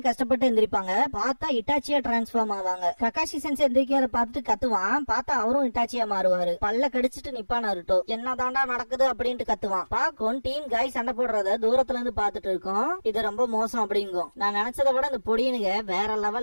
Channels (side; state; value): both; inverted; correlation -1.00